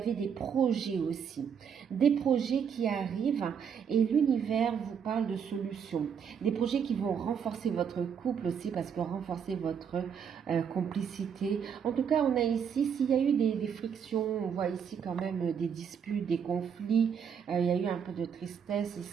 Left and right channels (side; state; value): left; quieter; 7.3 dB